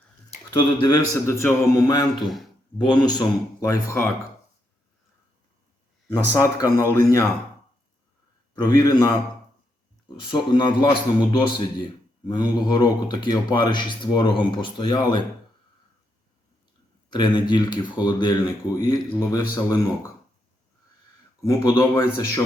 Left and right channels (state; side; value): normal; both; correlation 0.80